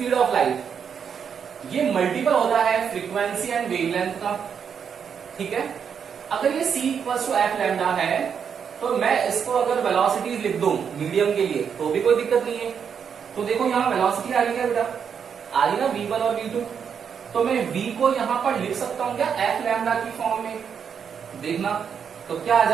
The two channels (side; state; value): left; quieter; 7.2 dB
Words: ऑफ लाइट, ये मल्टीपल होता है फ्रीक्वेंसी एंड वेवलेंथ का। ठीक है, अगर ये c equal to F lambda है तो मैं इसको अगर वेलोसिटीज लिख दूं मीडियम के लिए तो भी कोई दिक्कत नहीं है। तो देखो यहाँ वेलोसिटी आ रही है बेटा, आ रही ना v1 और v2, तो मैं v को यहां पर लिख सकता हूं क्या एफ लैम्डा की फॉर्म में। देखना तो क्या आ